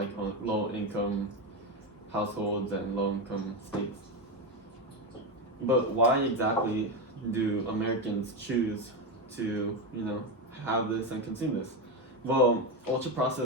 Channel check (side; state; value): both; normal; correlation 0.13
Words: low income households and low income states. But why exactly do Americans choose to have this and consume this? Well, ultra